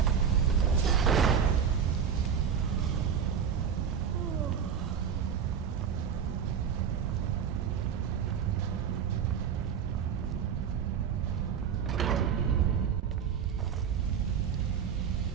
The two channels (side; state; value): left; quieter; 7.5 dB